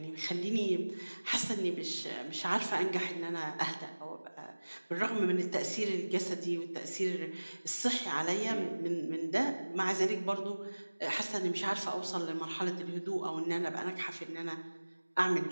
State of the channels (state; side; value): inverted; both; correlation -1.00